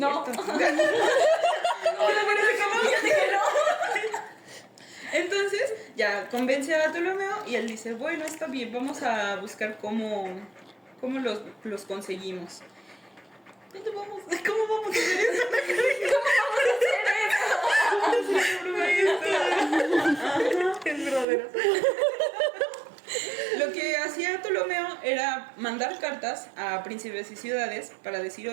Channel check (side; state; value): left; drops out; at 21.2 s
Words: Entonces ya convence a Ptolomeo y él dice, bueno, está bien, vamos a buscar cómo los conseguimos. ¿Cómo vamos a hacer eso? Es verdadero. Lo que hacía Ptolomeo era mandar cartas a príncipes y ciudades para decir,